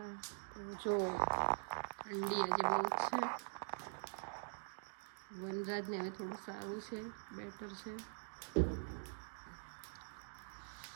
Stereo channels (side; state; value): left; silent; digital silence